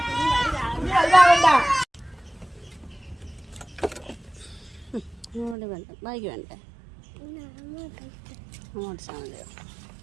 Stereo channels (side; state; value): left; drops out; at 5.6 s